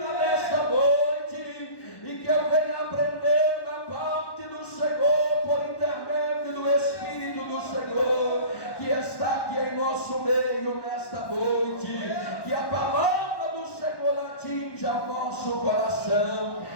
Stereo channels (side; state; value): right; late; 1.1 ms